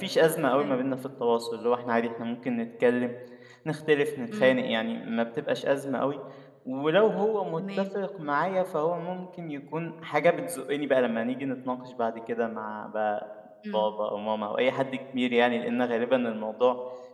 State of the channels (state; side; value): identical; both; correlation 1.00